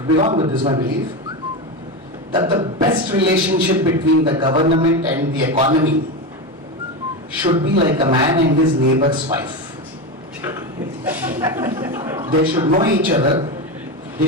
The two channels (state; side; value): normal; both; correlation 0.17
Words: be wrong, but this is my belief, that the best relationship between the government and the economy should be like a man and his neighbor's wife. They should know each other. They